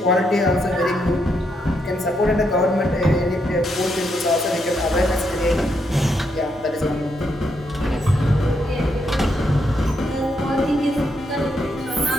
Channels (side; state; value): both; normal; correlation 0.79